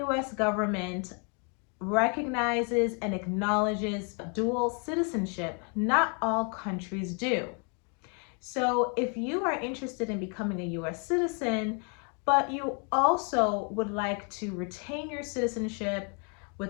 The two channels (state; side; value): quieter; right; 37.9 dB